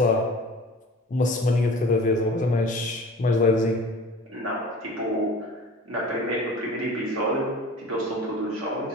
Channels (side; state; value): both; normal; correlation 0.41